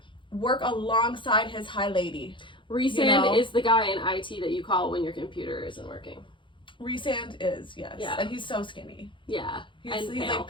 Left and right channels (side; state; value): right; late; 0.24 ms